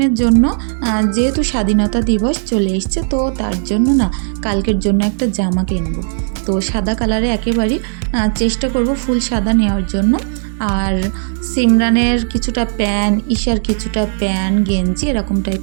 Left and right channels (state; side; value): silent; left; digital silence